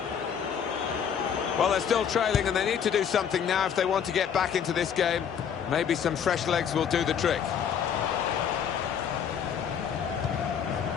Well, they're still trailing and they need to do something now if they want to get back into this game. Maybe some fresh legs will do the trick.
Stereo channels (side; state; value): right; quieter; 8.0 dB